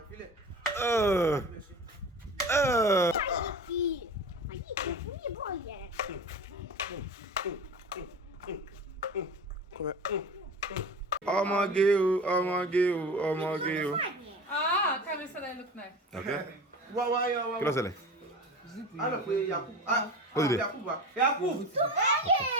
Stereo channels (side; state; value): both; normal; correlation 0.33